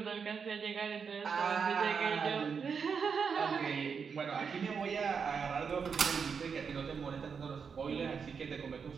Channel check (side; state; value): left; quieter; 6.1 dB